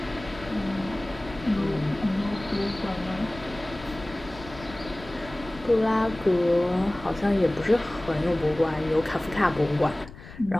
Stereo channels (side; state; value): left; noise; rumble, 16 dB below the sound